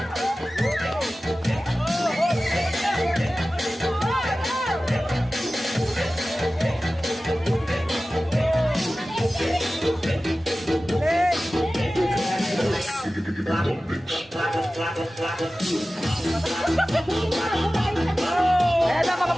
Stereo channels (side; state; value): both; normal; correlation 0.96